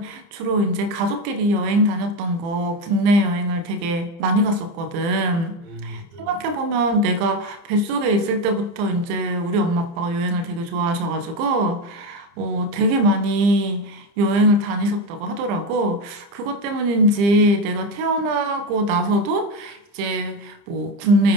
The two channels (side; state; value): left; late; 30 ms